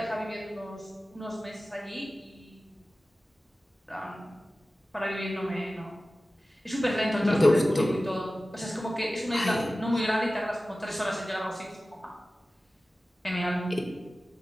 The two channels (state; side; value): normal; both; correlation 0.96